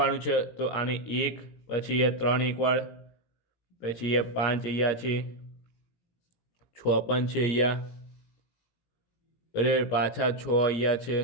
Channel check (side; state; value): right; late; 17 ms